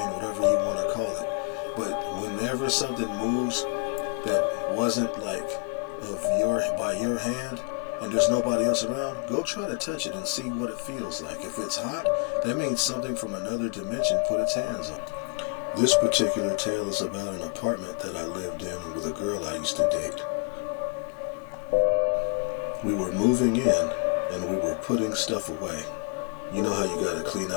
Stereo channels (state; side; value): quieter; right; 37.7 dB